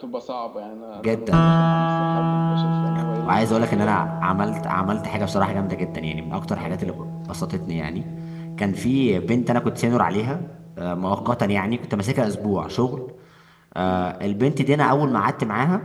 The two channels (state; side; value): identical; both; correlation 1.00